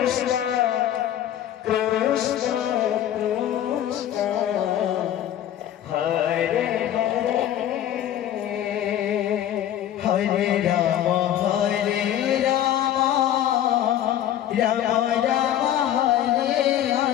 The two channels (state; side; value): quieter; right; 11.4 dB